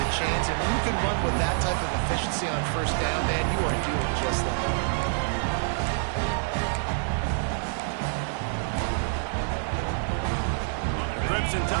chains, and when you can run with that type of efficiency on 1st down, man, you are doing just that. The Crimson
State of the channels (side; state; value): left; silent; digital silence